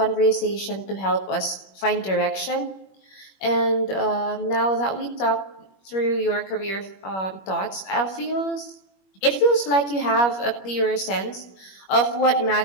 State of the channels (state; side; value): late; right; 21 ms